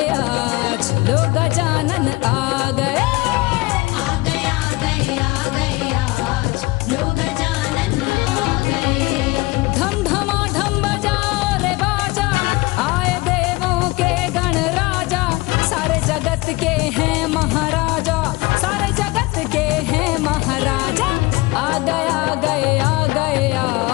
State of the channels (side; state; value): right; quieter; 22.3 dB